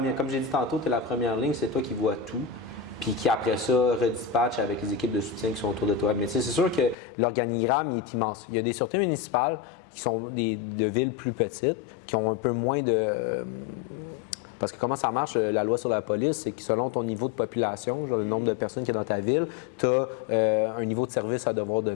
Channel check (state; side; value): drops out; right; at 7.0 s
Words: comme j'ai dit tantôt, tu es la première ligne, c'est toi qui vois tout. Puis qui, après ça, redispatche avec les équipes de soutien qui sont autour de toi. Mais tu sais, c'est sûr que l'organigramme il est immense. Il y a des sûretés municipales qui sont de villes plus petites, qui ont un peu moins de... Parce que comment ça marche, la loi sur la police, c'est que selon ton niveau de population, genre le nombre de personnes qui est dans ta ville, tu as un niveau de service à devoir